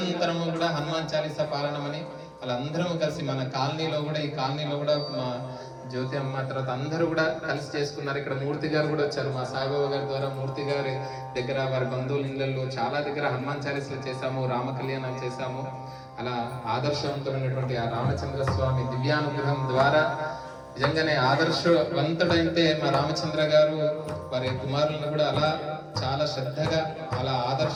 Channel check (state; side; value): identical; both; correlation 1.00